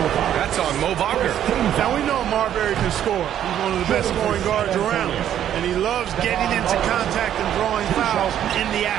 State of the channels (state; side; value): quieter; left; 10.6 dB